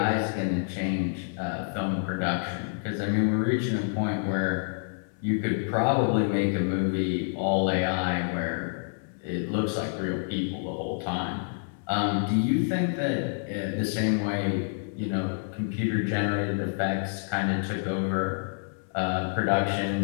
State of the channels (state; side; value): silent; right; 59 dB below the other